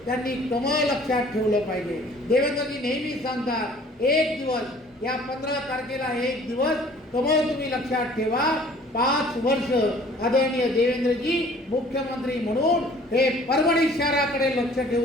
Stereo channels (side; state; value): both; normal; correlation 0.53